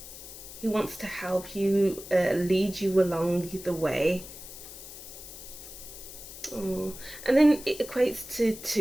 who wants to help you, lead you along the way. Oh, and then it equates to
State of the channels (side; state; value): left; noise; hiss, 14 dB below the sound